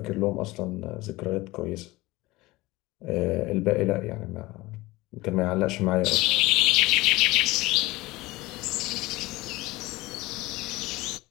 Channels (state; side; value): quieter; right; 20.2 dB